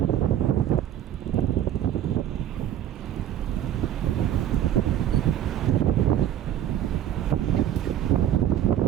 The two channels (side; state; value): left; quieter; 11.1 dB